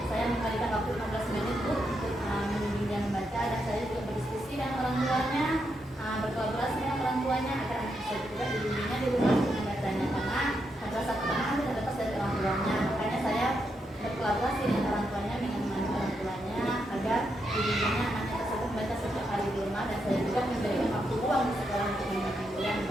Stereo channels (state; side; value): normal; both; correlation 0.82